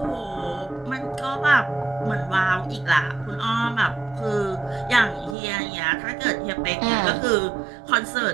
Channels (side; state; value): left; drops out; at 5.4 s